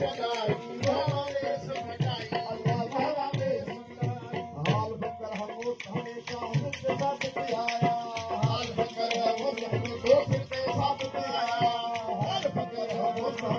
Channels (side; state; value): both; identical; correlation 1.00